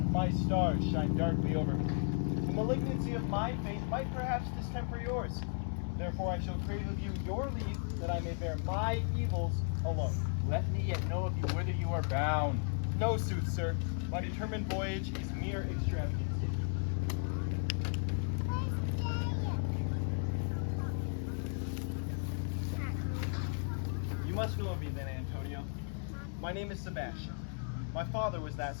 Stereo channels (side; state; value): right; silent; 54 dB below the other